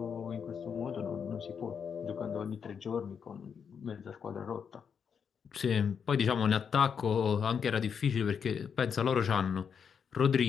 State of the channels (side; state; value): right; quieter; 6.9 dB